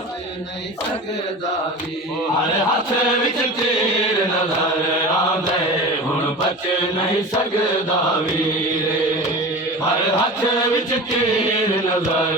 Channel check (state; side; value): normal; both; correlation 0.33